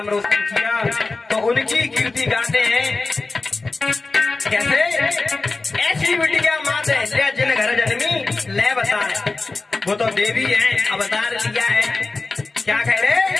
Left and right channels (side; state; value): right; quieter; 3.6 dB